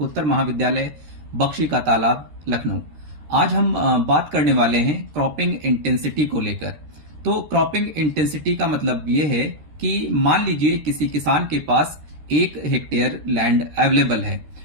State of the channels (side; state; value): left; late; 13 ms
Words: महाविद्यालय बख्शी का तालाब, लखनऊ। आज हम बात करने वाले हैं क्रॉपिंग इंटेंसिटी को लेकर। तो क्रॉपिंग इंटेंसिटी का मतलब ये है कि मान लीजिए किसी किसान के पास 1 हेक्टेयर लैंड अवेलेबल है